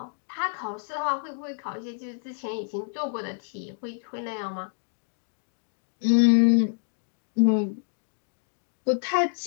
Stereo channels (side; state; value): right; silent; digital silence